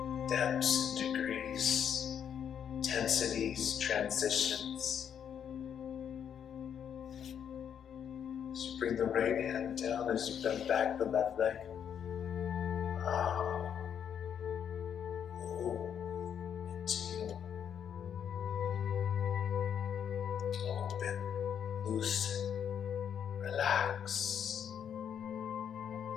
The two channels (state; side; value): quieter; right; 8.4 dB